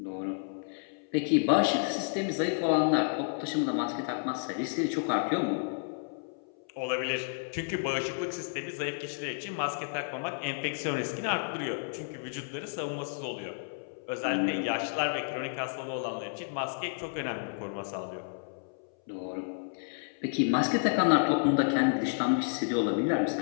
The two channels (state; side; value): silent; right; 57 dB below the other